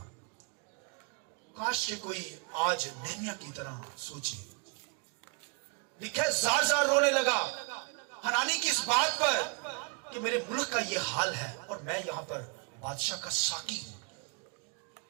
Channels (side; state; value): left; quieter; 35.1 dB